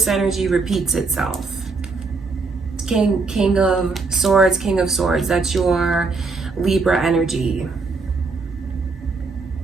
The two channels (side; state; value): left; quieter; 4.1 dB